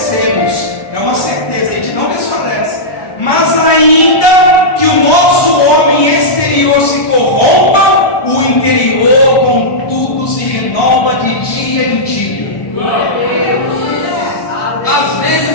É uma certeza, a gente não desfalece. Mas ainda que o nosso homem exterior se corrompa, o interior contudo se renova de dia em dia. Às vezes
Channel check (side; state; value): right; late; 1.1 ms